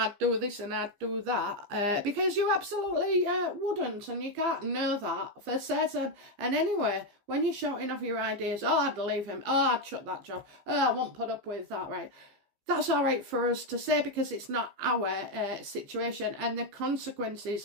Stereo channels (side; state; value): left; late; 15 ms